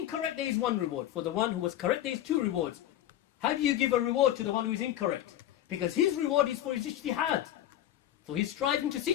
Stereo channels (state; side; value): quieter; right; 12.4 dB